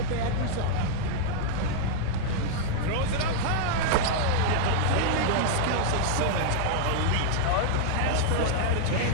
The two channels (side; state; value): both; different; correlation -0.01